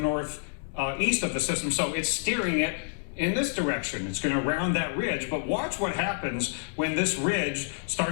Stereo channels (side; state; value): right; silent; digital silence